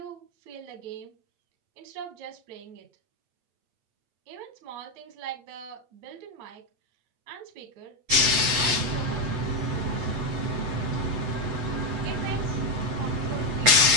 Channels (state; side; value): late; left; 8.1 ms